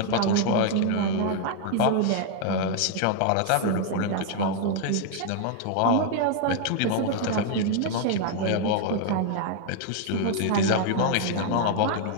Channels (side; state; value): both; different; correlation 0.00